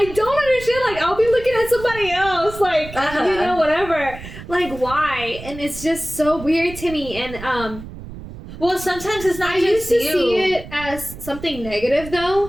don't understand. Like I'll be looking at somebody else, like you know, whatever. Like why? And it's just so weird to me. And well, sometimes it's not I just used to you. see it as something negative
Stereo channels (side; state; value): right; noise; rumble, 13 dB below the sound